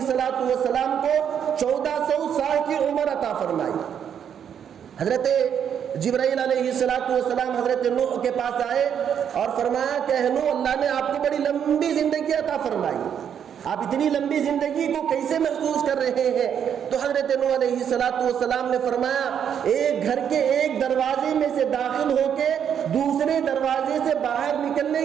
کو 1400 سال کی عمر عطا فرمائی۔ حضرت جبرائیل علیہ السلام حضرت نوح کے پاس آئے اور فرمایا کہ نوح، اللہ نے آپ کو بڑی لمبی زندگی عطا فرمائی، آپ اتنی لمبی زندگی کو کیسے محسوس کر رہے ہیں؟ تو حضرت نوح علیہ السلام نے فرمایا ایک گھر کے ایک دروازے میں سے داخل ہو کے دوسرے دروازے سے باہر نکلنے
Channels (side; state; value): left; quieter; 8.5 dB